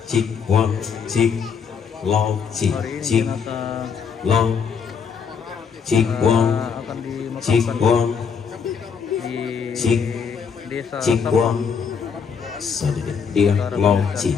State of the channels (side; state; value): right; quieter; 6.4 dB